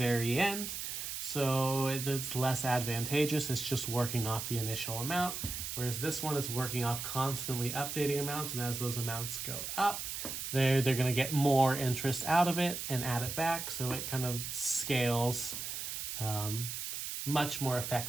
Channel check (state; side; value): noise; right; hiss, 5 dB below the sound